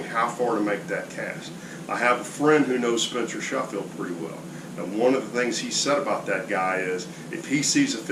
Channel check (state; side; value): identical; both; correlation 1.00